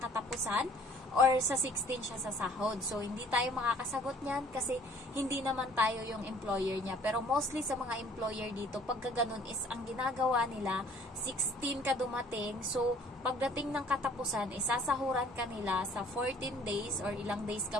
or sa 16 siya sasahod. So hindi tayo makakasagot niyan kasi hindi naman tayo yung employer niya. Pero mostly sa mga employer dito, pagka ganun is ang ginagawa nila, 16 ka dumating. So pagdating ng katapusan, isasahuran ka nila sa 14 days or ilang days ka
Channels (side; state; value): both; normal; correlation 0.55